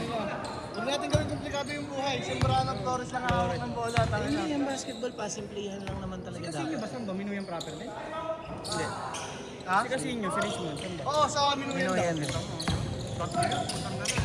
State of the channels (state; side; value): identical; both; correlation 1.00